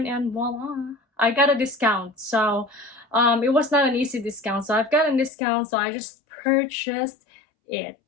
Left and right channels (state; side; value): drops out; right; at 5.3 s